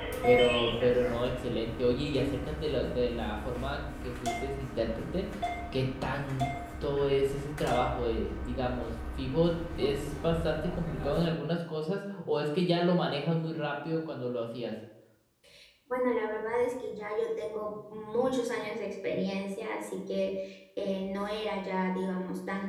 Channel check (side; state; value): both; identical; correlation 1.00